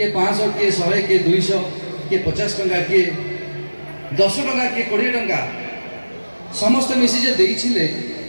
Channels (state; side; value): inverted; both; correlation -1.00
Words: 500 किए 100 किए 200 किए 50 टंका किए 10 टंका किए 20 टंका समस्त मिसी जे देइछिले